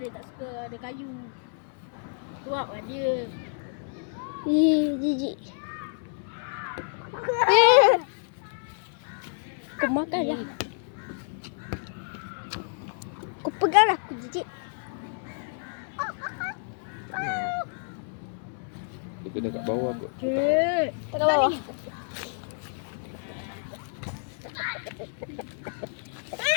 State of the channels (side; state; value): right; silent; 59 dB below the other